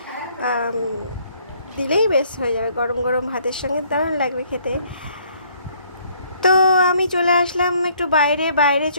দিলেই বেশ হয়ে যাবে, গরম গরম ভাতের সঙ্গে দারুণ লাগবে খেতে। তো আমি চলে আসলাম একটু বাইরে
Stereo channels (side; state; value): both; inverted; correlation -0.63